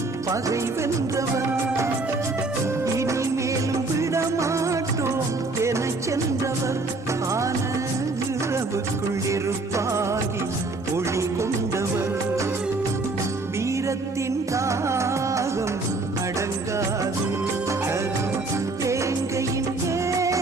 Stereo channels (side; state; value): left; quieter; 3.3 dB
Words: பகை வென்றவர். இனிமேலும் விடமாட்டோம் என சென்றவர் ஆன இரவுக்குள் இருப்பாகி ஒளி கொண்டவர். வீரத்தின் தாகம் அடங்காது, தேங்கையின்